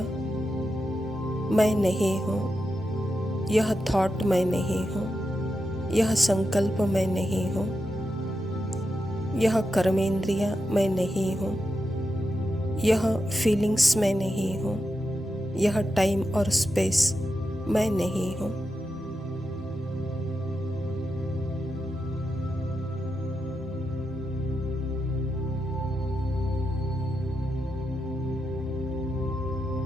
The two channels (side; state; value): both; normal; correlation 0.87